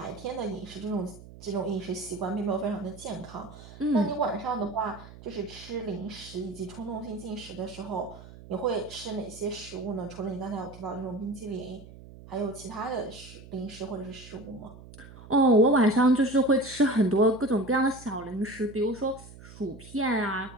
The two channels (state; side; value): noise; right; hum, 18 dB below the sound